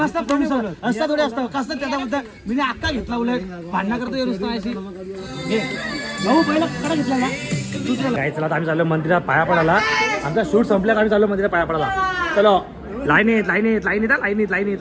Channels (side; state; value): both; identical; correlation 1.00